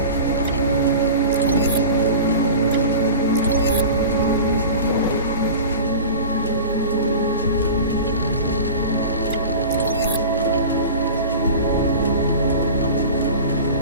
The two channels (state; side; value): inverted; both; correlation -0.35